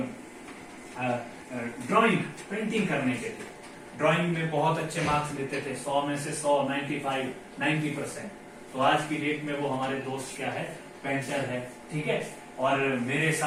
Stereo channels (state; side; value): identical; both; correlation 1.00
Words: ड्राइंग पेंटिंग करने के थे। ड्राइंग में बहुत अच्छे मार्क्स लेते थे, 100 में से 100, 95, 90%। तो आज की डेट में वो हमारे दोस्त क्या है? पेंटर है, ठीक है। और मेरे